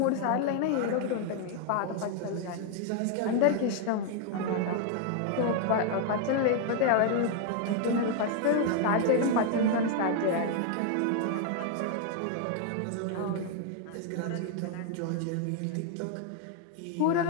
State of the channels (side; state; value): both; different; correlation 0.00